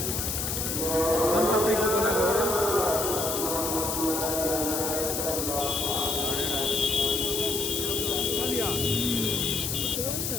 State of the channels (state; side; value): noise; left; hiss, 2 dB below the sound